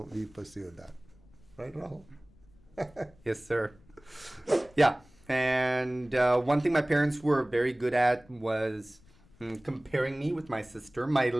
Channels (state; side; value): noise; left; rumble, 28 dB below the sound